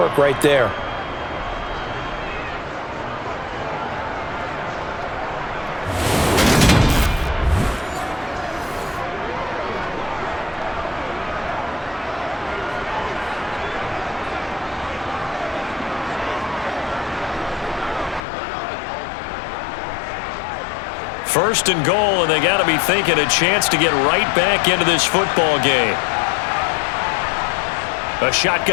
right there. First and goal, and they got to be thinking a chance to get right back into this football game. A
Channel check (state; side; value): drops out; right; at 18.2 s